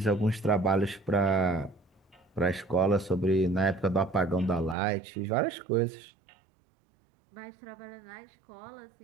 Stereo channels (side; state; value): left; drops out; at 4.8 s